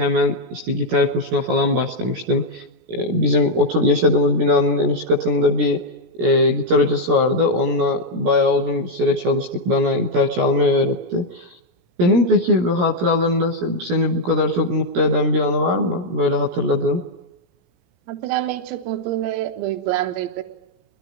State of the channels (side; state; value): left; late; 17 ms